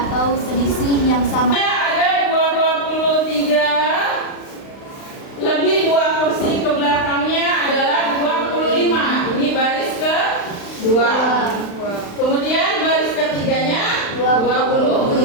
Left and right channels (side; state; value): right; late; 35 ms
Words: atau selisih yang sama. Ada 23 lebih 2 kursi ke belakangnya adalah 25. Ini baris ke 2. Kemudian baris ketiganya